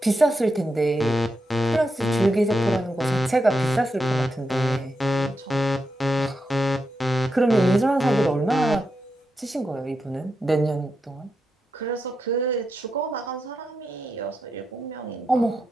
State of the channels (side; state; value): both; normal; correlation 0.86